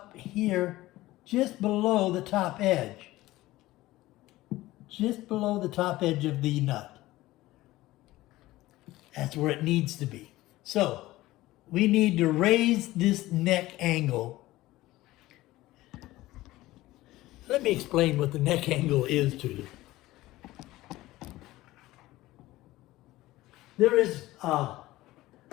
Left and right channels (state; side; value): quieter; right; 17.4 dB